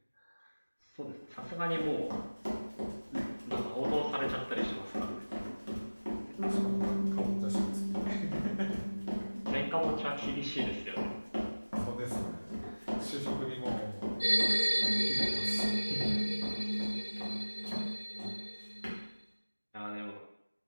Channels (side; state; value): both; inverted; correlation -1.00